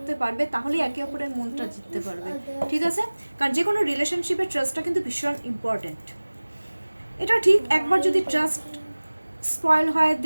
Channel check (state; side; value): inverted; both; correlation -1.00